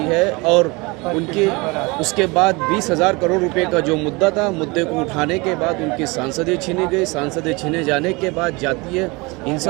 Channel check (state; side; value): quieter; left; 25.8 dB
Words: है और उनकी उसके बाद 20,000 करोड़ रुपए का जो मुद्दा था, मुद्दे को उठाने के बाद उनकी सांसदें छीनी गई। सांसदें छीने जाने के बाद जातीय